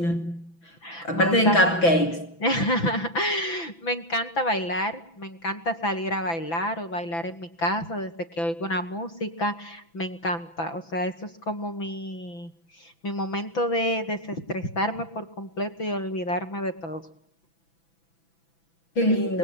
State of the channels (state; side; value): late; right; 6.0 ms